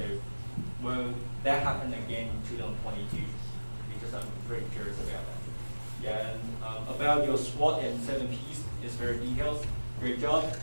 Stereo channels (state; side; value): inverted; both; correlation -1.00